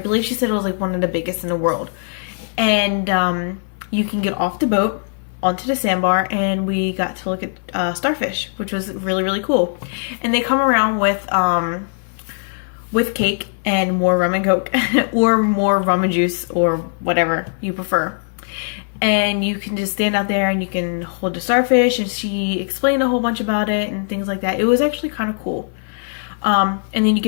she said it was like one of the biggest in the world. And you can get off the boat onto the sandbar, and we got to look at starfish, which was really, really cool. And they come around with cake and more rum and Coke or more rum and juice or whatever you prefer. And you can just stand out there and you can hold the starfish, and she explained a whole bunch about it and things like that. It was actually kind of cool. And then you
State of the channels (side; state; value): right; silent; 58 dB below the other